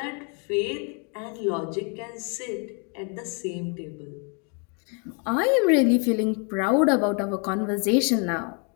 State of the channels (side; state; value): right; quieter; 37.0 dB